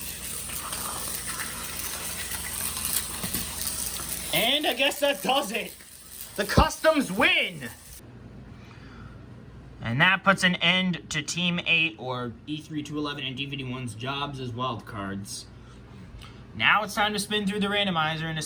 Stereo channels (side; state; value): both; identical; correlation 1.00